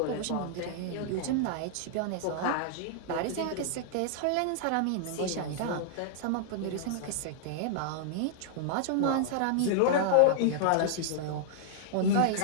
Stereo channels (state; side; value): different; both; correlation -0.01